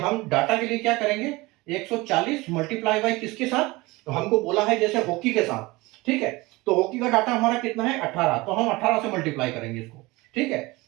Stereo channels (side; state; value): left; quieter; 22.1 dB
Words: डाटा के लिए क्या करेंगे, 140 मल्टीप्लाई बाय किसके साथ, तो हमको बोला है जैसे हॉकी के साथ, ठीक है, तो हॉकी का डाटा हमारा कितना है 18, तो हम 18 से मल्टीप्लाई करेंगे इसको, ठीक है,